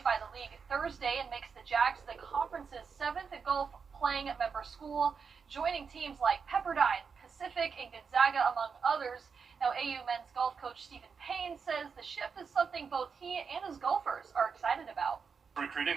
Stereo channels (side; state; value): left; quieter; 5.8 dB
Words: by the league Thursday and makes the Jags the conference's 7th golf playing member school, joining teams like Pepperdine, Pacific, and Gonzaga, among others. Now, AU men's golf coach Stephen Payne says the shift is something both he and his golfers are excited about. Recruiting,